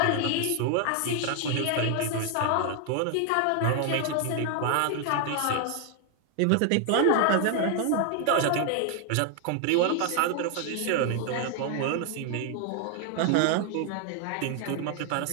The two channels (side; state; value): both; different; correlation 0.00